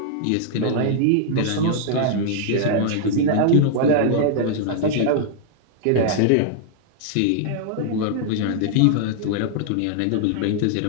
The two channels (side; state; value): both; different; correlation 0.00